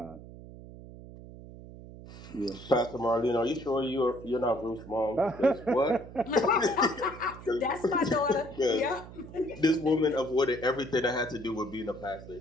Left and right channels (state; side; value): noise; right; hum, 15 dB below the sound